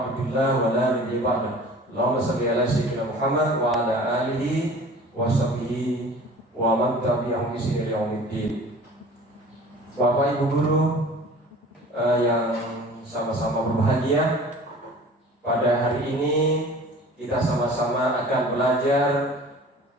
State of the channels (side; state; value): both; normal; correlation 0.44